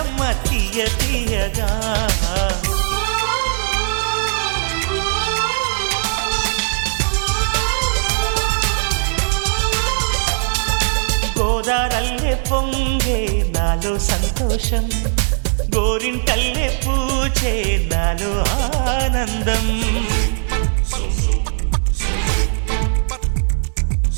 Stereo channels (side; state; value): left; silent; 62 dB below the other